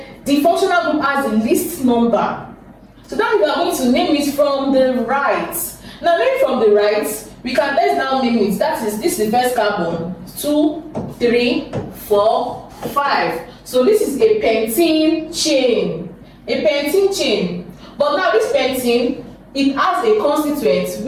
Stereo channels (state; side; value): identical; both; correlation 1.00